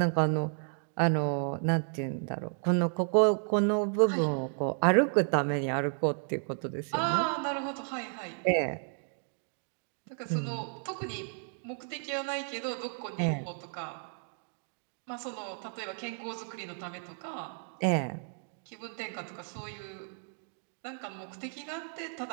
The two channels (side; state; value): left; silent; 56 dB below the other